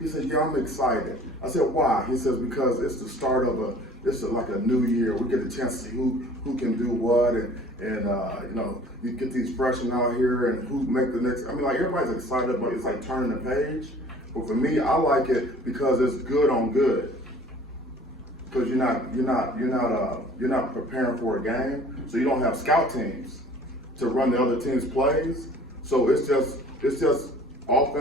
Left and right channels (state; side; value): normal; both; correlation 0.50